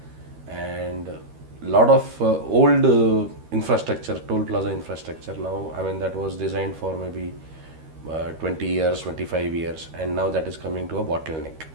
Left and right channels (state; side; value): late; left; 13 ms